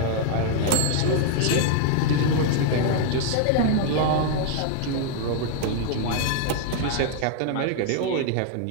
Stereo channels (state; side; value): different; both; correlation 0.00